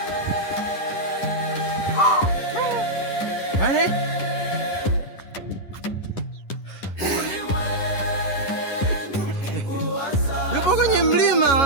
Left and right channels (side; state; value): right; late; 10 ms